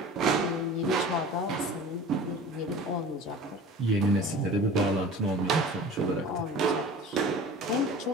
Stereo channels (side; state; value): both; normal; correlation 0.40